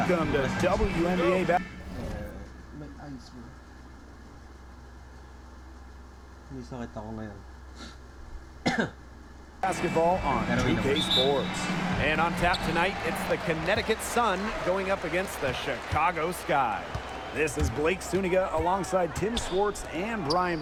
Welcome to WNBA May ice mo. May sakit ako ngayon. basketball on 2K Sports. And on tap tonight, it's the Connecticut Sun going up against the Chicago Sky. This is Blake Suniga alongside Tim Swartz and Brian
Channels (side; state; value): both; identical; correlation 1.00